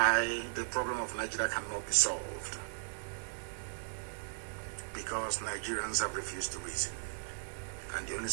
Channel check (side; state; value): left; silent; 53 dB below the other